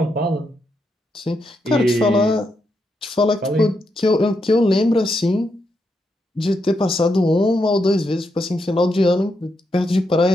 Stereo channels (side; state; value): both; normal; correlation 0.82